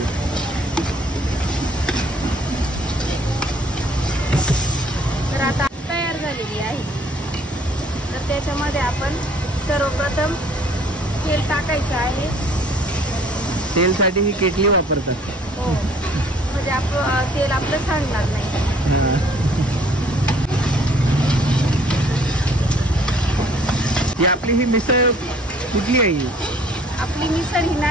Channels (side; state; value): both; normal; correlation 0.58